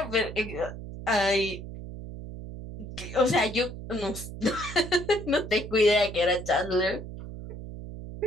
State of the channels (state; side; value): noise; right; hum, 10 dB below the sound